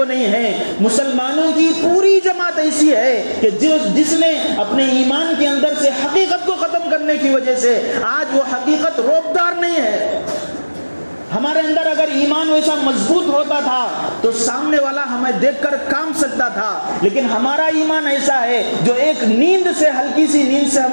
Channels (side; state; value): both; inverted; correlation -1.00